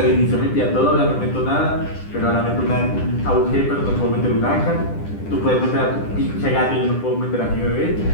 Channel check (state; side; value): late; right; 10 ms